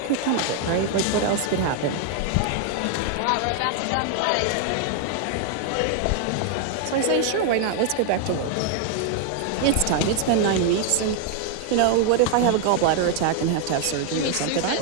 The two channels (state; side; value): different; both; correlation 0.00